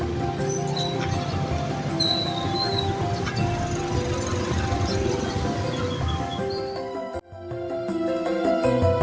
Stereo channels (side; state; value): both; identical; correlation 1.00